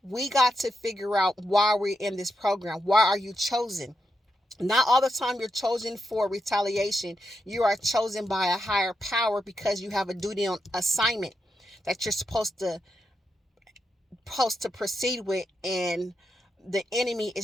we got to figure out why we're in this program. Why are you chosen? Not all the time you're chosen for retaliation. You are chosen by a higher power because you have a duty on assignment that you're supposed to proceed with, and the enemy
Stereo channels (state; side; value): normal; both; correlation 0.85